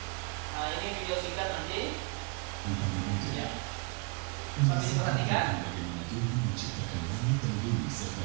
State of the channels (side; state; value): left; quieter; 33.1 dB